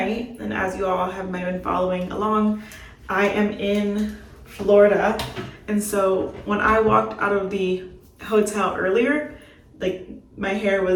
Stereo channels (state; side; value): identical; both; correlation 1.00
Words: and as you all have might have been following along, I am in Florida. And so when I walked out of the hotel earlier, like my hair